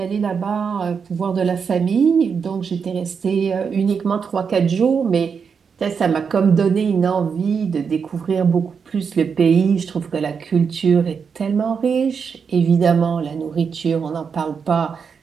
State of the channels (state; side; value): quieter; left; 6.2 dB